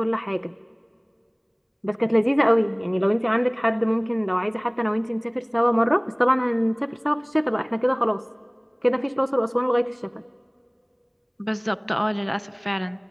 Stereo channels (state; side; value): identical; both; correlation 1.00